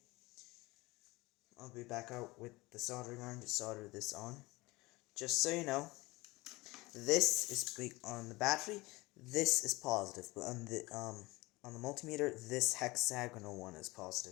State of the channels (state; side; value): quieter; right; 21.9 dB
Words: I'll be back out with the soldering iron to solder this on. Just so you know, this is big on the battery, this is positive, but on the multimeter, this hexagonal one is